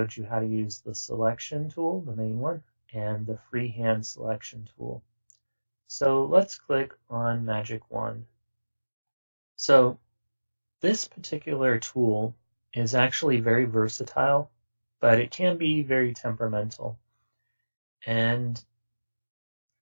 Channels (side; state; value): both; inverted; correlation -1.00